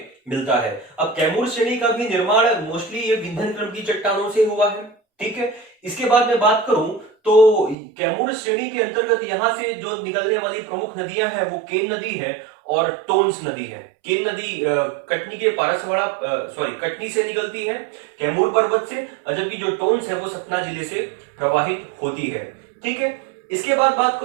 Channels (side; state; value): left; drops out; at 7.8 s